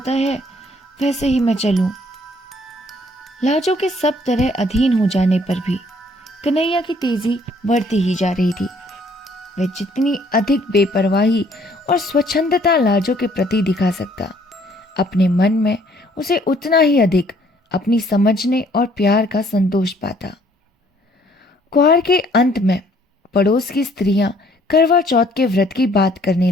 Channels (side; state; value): both; normal; correlation 0.62